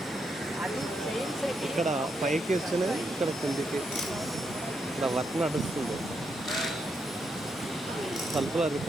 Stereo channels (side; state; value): both; normal; correlation 0.81